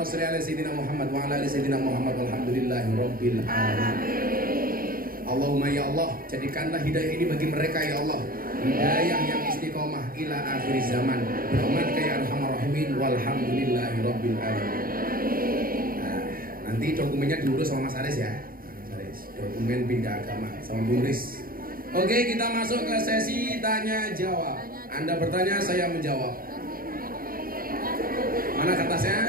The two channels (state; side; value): late; left; 0.42 ms